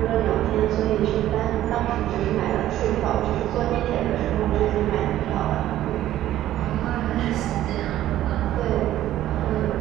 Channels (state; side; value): quieter; left; 13.3 dB